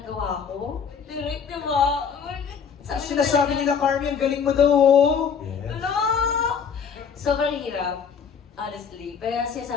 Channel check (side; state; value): right; quieter; 6.6 dB